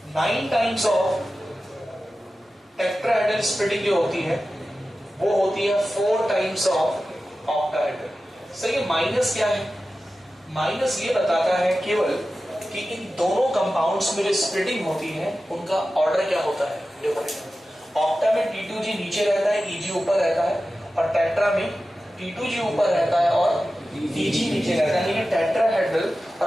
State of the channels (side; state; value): both; normal; correlation 0.94